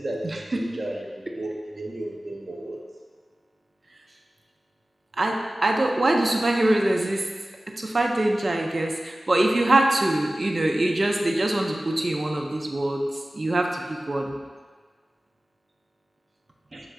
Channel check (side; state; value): both; normal; correlation 0.96